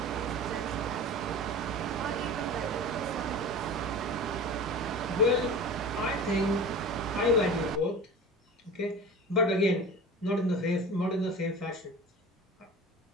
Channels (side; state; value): both; normal; correlation 0.34